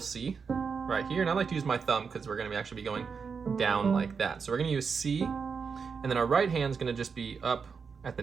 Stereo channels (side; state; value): left; quieter; 5.7 dB